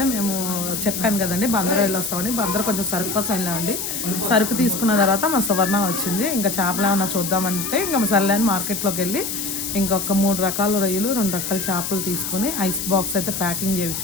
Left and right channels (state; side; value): noise; left; hiss, 4 dB below the sound